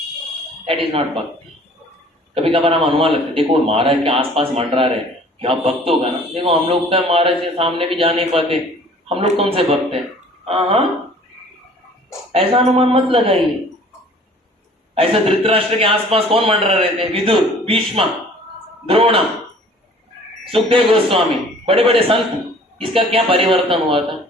दैट इज नॉट भक्ति। कभी कभार हम अनुमान लगते, देखो महाराज के आसपास मंडरा रहे, क्या भक्त होगा ना। देखो हम लोग तो महाराज के सामने भी जा नहीं पाते, हम लोग कौन से भक्त हैं? हाँ, ऐसा अनुमान मत लगाइए। ऐसा धृतराष्ट्र के आसपास कौन मंडरा रहे थे? विदुर, भीष्म, द्रोण, सुखदेव गोस्वामी, बड़े बड़े संत। इसका क्या परिवर्तन हुआ था?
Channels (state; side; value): normal; both; correlation 0.51